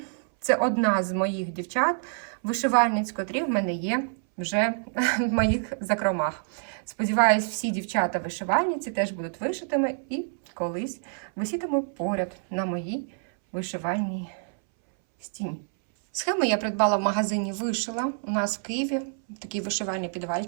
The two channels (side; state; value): left; silent; 60 dB below the other